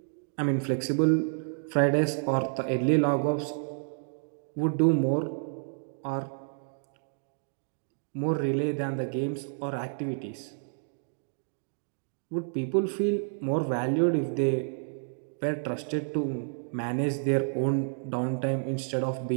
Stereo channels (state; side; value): silent; left; digital silence